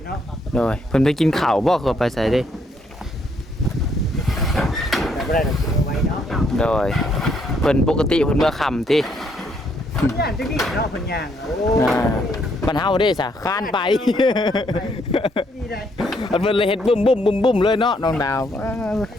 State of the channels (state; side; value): normal; both; correlation 0.71